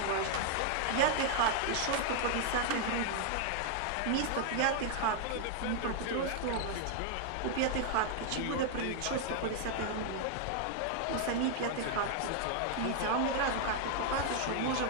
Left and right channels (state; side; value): different; both; correlation 0.00